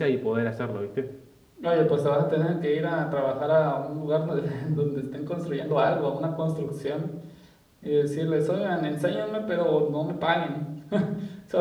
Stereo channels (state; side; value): identical; both; correlation 1.00